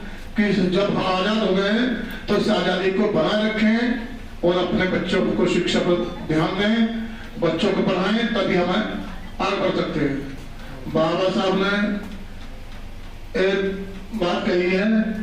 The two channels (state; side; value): identical; both; correlation 1.00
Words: कि जब हम आजाद हो गए तो इस आजादी को बनाए रखें और अपने बच्चों को शिक्षा पर ध्यान दें, बच्चों को पढ़ाएं, तभी हमें आगे बढ़ सकते हैं। बाबा साहब ने एक बात कही है,